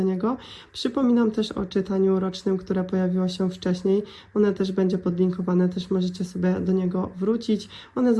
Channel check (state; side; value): identical; both; correlation 1.00